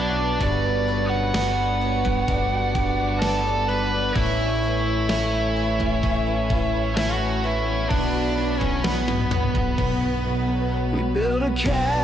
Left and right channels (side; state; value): both; normal; correlation 0.81